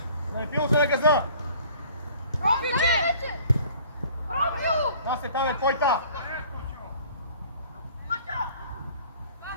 Да не пило се на газа! Насе, там е твойта!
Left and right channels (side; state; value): both; inverted; correlation -0.51